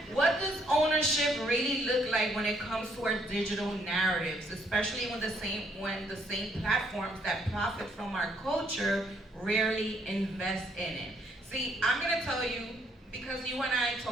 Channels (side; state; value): both; normal; correlation 0.70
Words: what does ownership really look like when it comes to our digital narratives, especially when the same platforms that profit from our culture rarely invest in it? See, I'm gonna tell you, because you and I